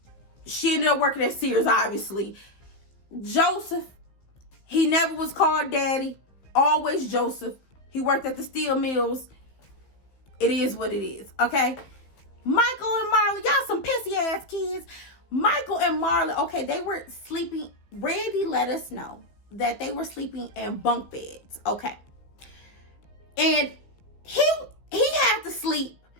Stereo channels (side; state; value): right; late; 15 ms